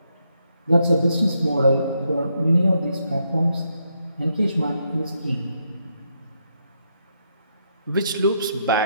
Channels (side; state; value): both; inverted; correlation -0.79